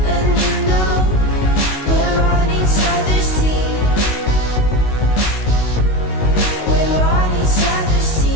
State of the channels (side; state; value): right; late; 19 ms